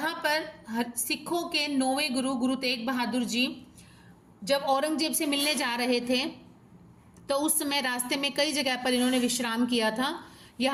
पर सिखों के 9वें गुरु तेग बहादुर जी जब औरंगजेब से मिलने जा रहे थे तो उस समय रास्ते में कई जगह पर इन्होंने विश्राम किया था।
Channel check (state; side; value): identical; both; correlation 1.00